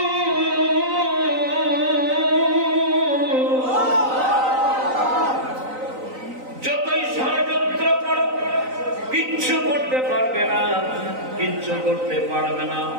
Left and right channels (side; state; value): left; late; 3.9 ms